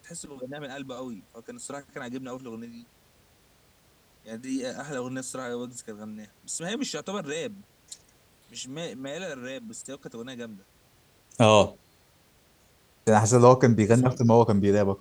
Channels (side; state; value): both; identical; correlation 1.00